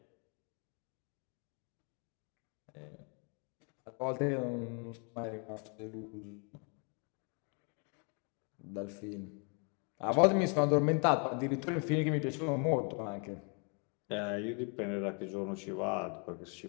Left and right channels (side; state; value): right; quieter; 36.9 dB